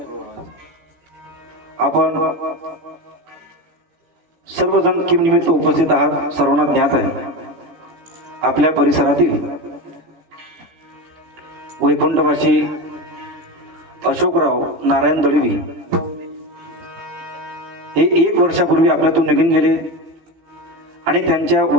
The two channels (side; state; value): left; late; 16 ms